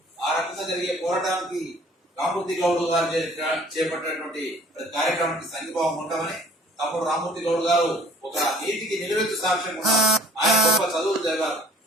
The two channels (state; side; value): normal; both; correlation 0.53